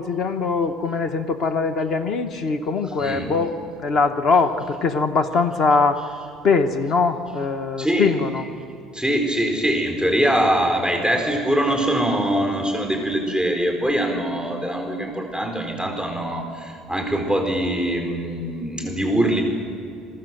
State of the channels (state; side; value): normal; both; correlation 0.66